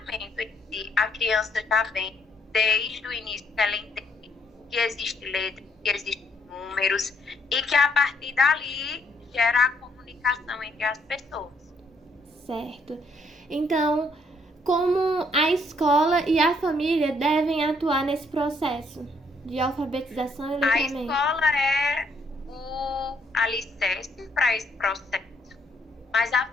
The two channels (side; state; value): both; normal; correlation 0.70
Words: em si, a criança já vem desde o início que ela entende que existe letra, que existem números e que a partir dali gera a comunicação entre as pessoas. Certo. Então, como a escola e a família devem atuar nesse processo de alfabetização e A letramento? escola é o alicerce para esse processo, mas a